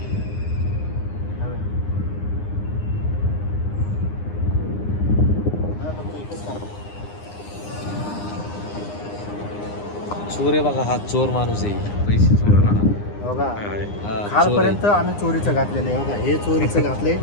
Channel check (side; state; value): right; late; 9.8 ms